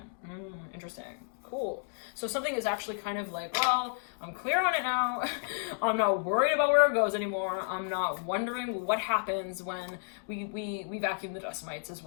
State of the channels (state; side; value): silent; right; digital silence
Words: Interesting. Cool. So something is actually kind of like, well, I'm clear on it now. I'm not worried about where it goes anymore. I'm not wondering what happens when we vacuum the dust mites as